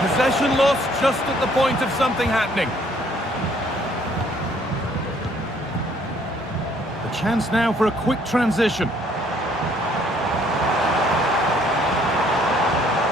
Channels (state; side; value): normal; both; correlation 0.63